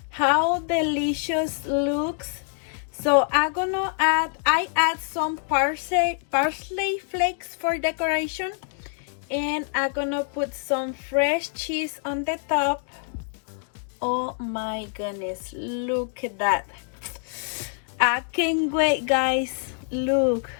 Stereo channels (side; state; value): right; silent; 55 dB below the other